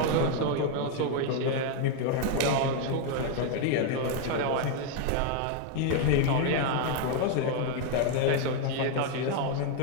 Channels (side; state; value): both; different; correlation 0.00